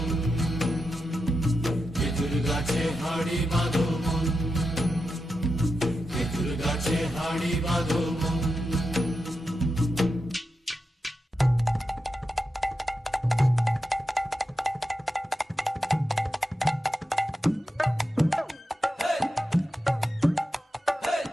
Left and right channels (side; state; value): both; normal; correlation 0.89